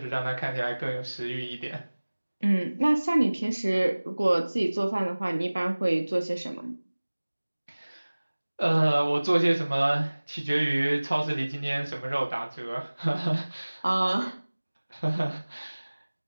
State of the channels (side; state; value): both; inverted; correlation -1.00